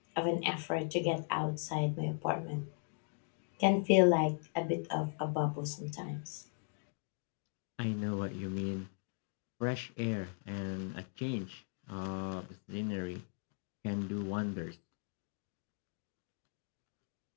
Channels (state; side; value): silent; right; 52 dB below the other